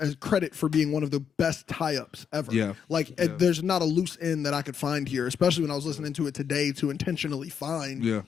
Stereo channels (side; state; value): right; quieter; 7.4 dB